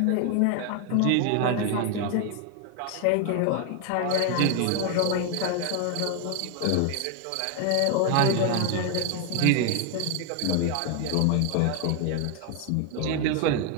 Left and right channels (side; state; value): both; different; correlation 0.01